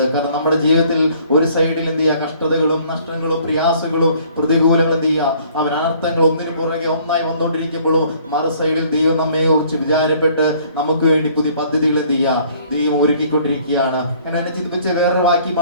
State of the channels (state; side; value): inverted; both; correlation -0.58